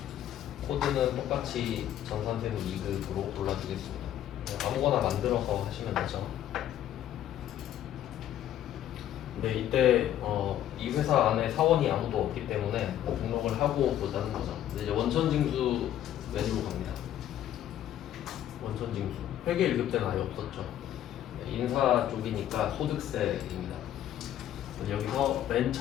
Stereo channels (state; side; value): quieter; right; 11.5 dB